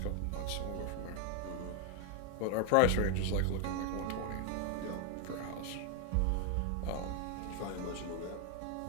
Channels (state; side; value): different; both; correlation 0.00